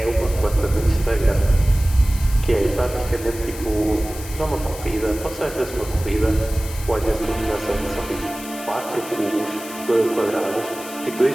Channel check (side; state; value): left; noise; hiss, 13 dB below the sound